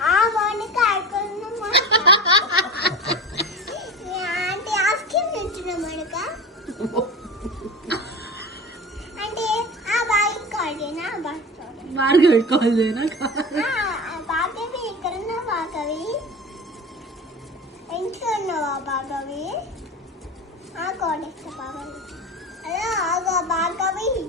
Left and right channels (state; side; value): normal; both; correlation 0.30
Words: మోనిక అంటే ఆస్కిమ్ తింటున్నా మోనిక అంటే బాగా కాదేనా భార్గవి కాల్ చేయనా? భార్గవి ఎక్కడున్నా భార్గవి? ఇంట్లో ఉన్నావా భార్గవి? కోడేస్తా భార్గవి. హలో భార్గవి